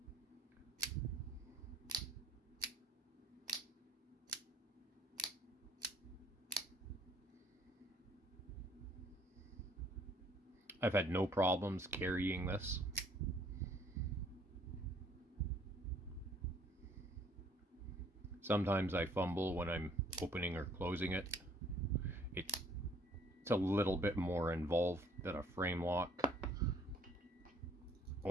I've had no problems carrying this. Sometimes I fumble when I'm opening or closing it. It's a little bit more involved than a frame lock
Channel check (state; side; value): normal; both; correlation 0.60